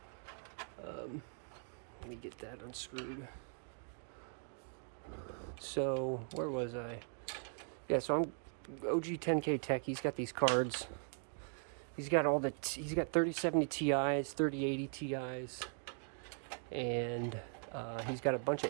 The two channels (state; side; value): silent; left; 51 dB below the other